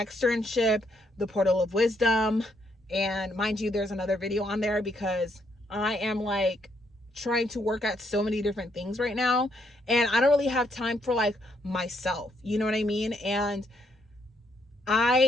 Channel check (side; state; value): both; normal; correlation 0.73